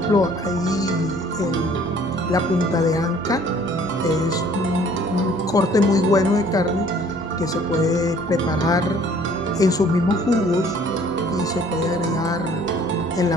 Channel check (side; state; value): both; normal; correlation 0.56